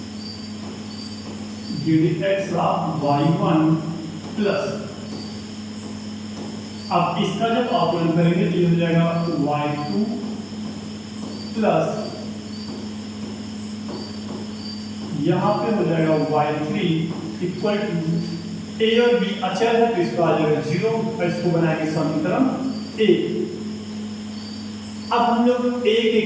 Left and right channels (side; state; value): both; identical; correlation 1.00